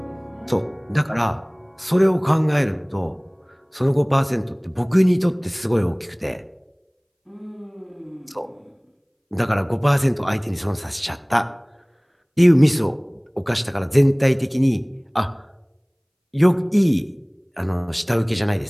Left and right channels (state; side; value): identical; both; correlation 1.00